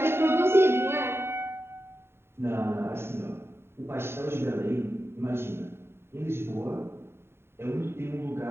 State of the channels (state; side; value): late; left; 0.12 ms